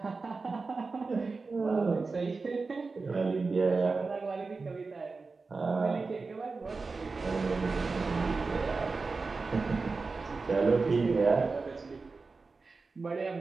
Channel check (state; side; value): quieter; left; 4.1 dB